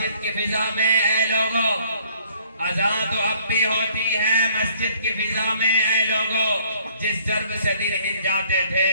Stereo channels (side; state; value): both; inverted; correlation -0.60